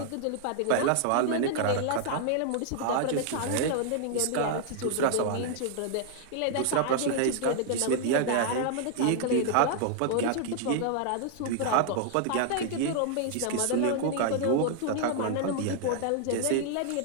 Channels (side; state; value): both; different; correlation 0.00